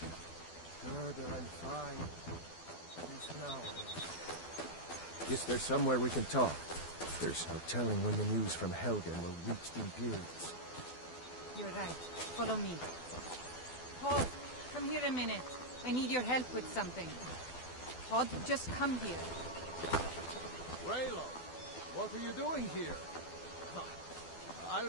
Gerda, I'm fine. At least now I am. Is there somewhere we can talk? There's no telling when the news from Helgen will reach the Imperials. You're right. Follow me. Hod, come here a minute. I need your help with something. Hod, just come here. Raylo, what are you doing here? I'll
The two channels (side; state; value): right; late; 12 ms